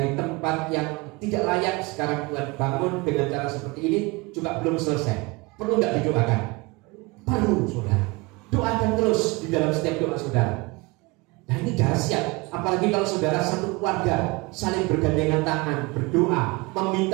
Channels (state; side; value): quieter; left; 25.3 dB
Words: tempat yang tidak layak sekarang Tuhan bangun dengan cara seperti ini juga belum selesai. Perlu nggak didoakan? Perlu saudara. Doakan terus di dalam setiap doa saudara. Nah ini dahsyat. Apalagi kalau saudara satu keluarga saling bergandengan tangan, berdoa,